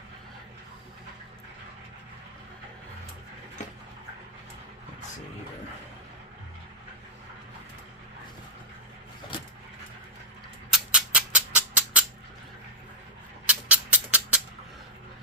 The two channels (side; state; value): both; normal; correlation -0.07